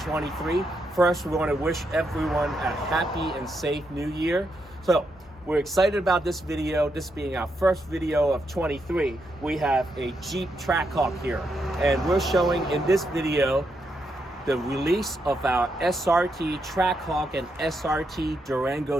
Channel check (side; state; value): both; normal; correlation 0.81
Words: First, we want to wish everyone a happy and safe new year. So, we're excited about this video, this being our first video of 23. We have a Jeep Trackhawk here, and we're showing in this video the release of our SRT Trackhawk and SRT